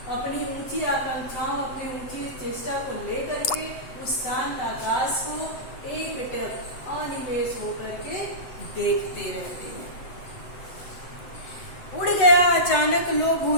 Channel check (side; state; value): right; late; 8.0 ms